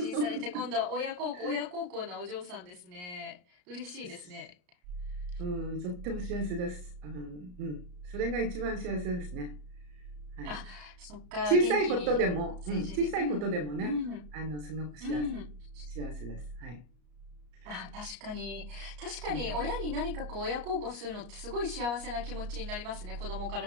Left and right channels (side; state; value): left; late; 34 ms